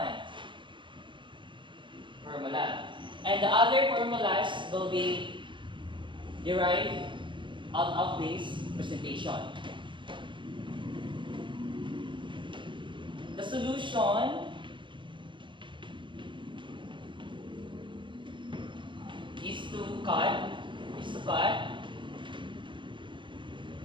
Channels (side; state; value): left; late; 0.23 ms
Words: formula. And the other formulas will be derived out of this presentation. The solution is to cut